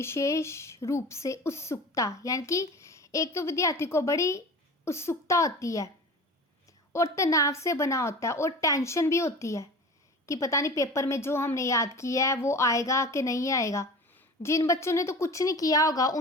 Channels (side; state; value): both; normal; correlation 0.36